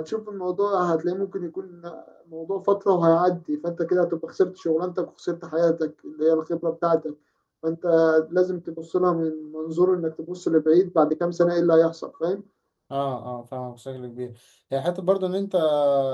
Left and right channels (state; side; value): identical; both; correlation 1.00